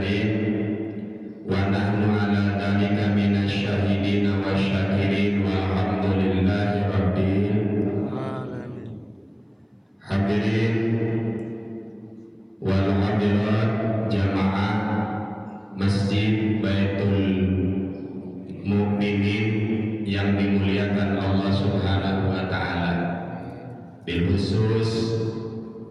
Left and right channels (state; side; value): identical; both; correlation 1.00